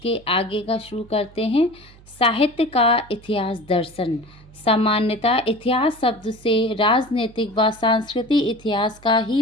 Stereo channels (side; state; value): right; noise; hum, 24 dB below the sound